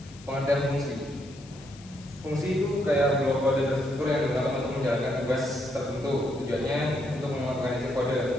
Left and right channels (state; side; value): noise; left; hiss, 22 dB below the sound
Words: Pengertian fungsi. Fungsi itu kayak blok kode terstruktur yang digunakan untuk menjalankan tugas tertentu. Tujuannya untuk mengorganisir